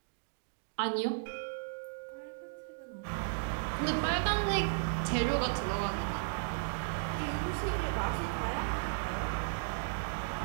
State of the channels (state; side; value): silent; left; digital silence